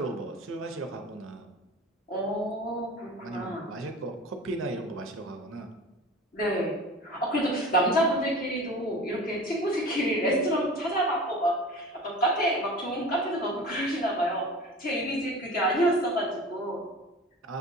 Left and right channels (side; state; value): both; normal; correlation 0.38